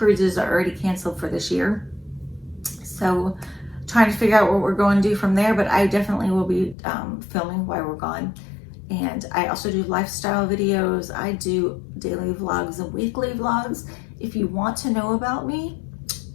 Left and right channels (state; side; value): drops out; right; at 6.8 s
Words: that are already canceled for this year. So trying to figure out what we're going to do from there, but I definitely will be filming while we're gone. And I also do lifestyle videos. I do daily vlogs and weekly vlogs. If you want to know about me,